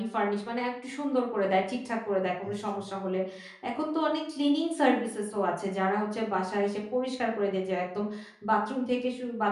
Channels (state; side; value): identical; both; correlation 1.00